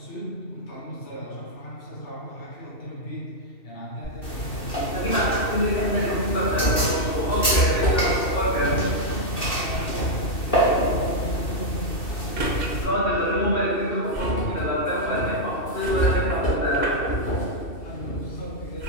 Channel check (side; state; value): right; late; 2.7 ms